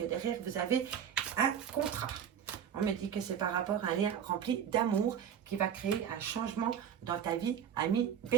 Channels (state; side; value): quieter; left; 8.6 dB